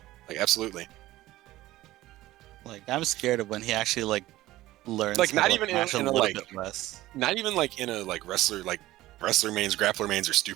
like absolutely. like I'm scared of when he actually like learns. Like, how not to even mash a in a, little like- bit less. Not even like in a wrestler mains, grappler mains are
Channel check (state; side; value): quieter; left; 16.5 dB